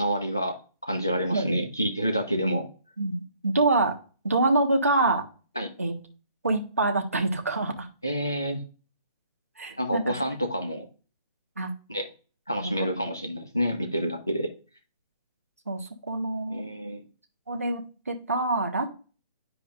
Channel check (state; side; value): inverted; both; correlation -0.65